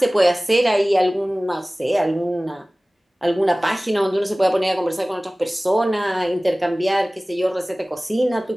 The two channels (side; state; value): both; normal; correlation 0.98